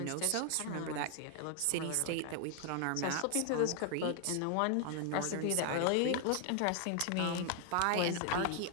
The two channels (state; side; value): different; both; correlation 0.00